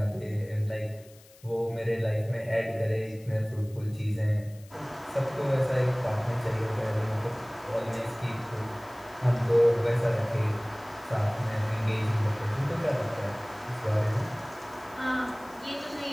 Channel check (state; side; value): noise; left; hiss, 25 dB below the sound